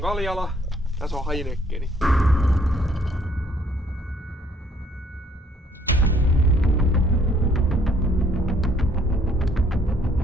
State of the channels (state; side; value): normal; both; correlation 0.64